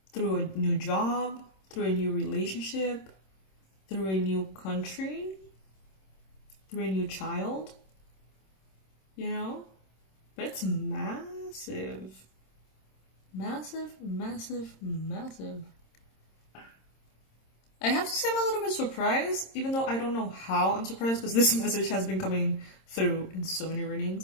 Through a new job, through a new relationship, through a new country, through a new child. You know? But it's massive. Massive, massive, massive. I have to say I'm a little bit surprised, even though I don't know how I'm surprised, because this message has been coming through in so many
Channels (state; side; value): late; right; 26 ms